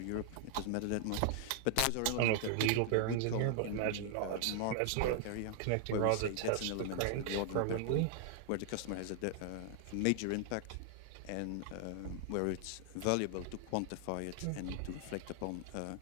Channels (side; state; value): both; different; correlation -0.01